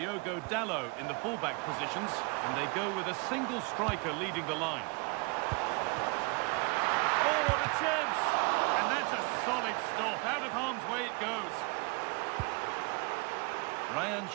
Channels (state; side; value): quieter; left; 30.5 dB